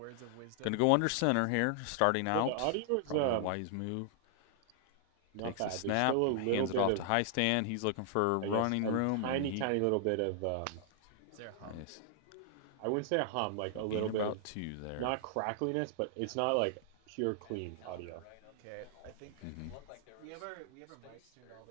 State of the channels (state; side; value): different; both; correlation 0.00